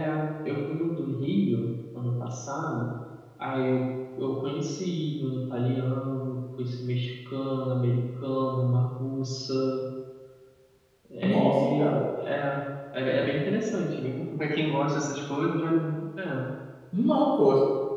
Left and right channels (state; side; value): identical; both; correlation 1.00